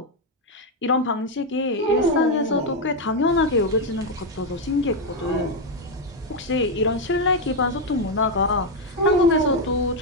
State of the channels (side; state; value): both; normal; correlation 0.04